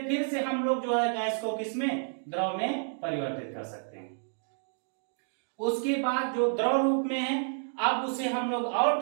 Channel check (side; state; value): left; silent; digital silence